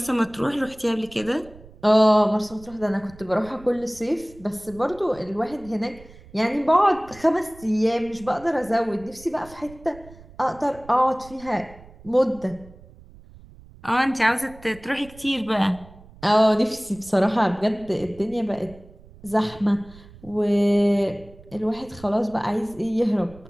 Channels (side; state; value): right; noise; rumble, 21 dB below the sound